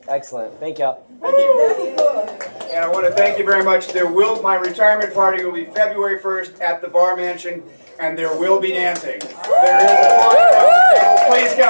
Excellent. Thank y'all. Thank you. And I want to thank you very much. My retirement party will be February 1st at the Bar Mansion, and there will be dancing. There is a party. Please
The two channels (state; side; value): inverted; both; correlation -1.00